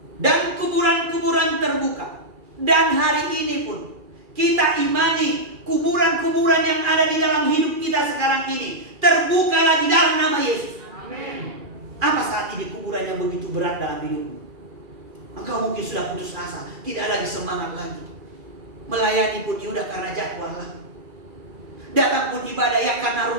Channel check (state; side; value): late; left; 2.4 ms